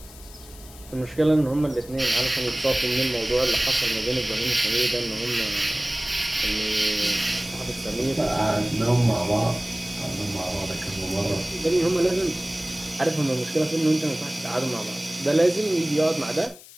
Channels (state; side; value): noise; left; hiss, 20 dB below the sound